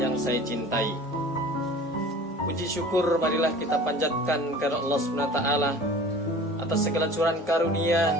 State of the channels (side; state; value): both; normal; correlation 0.43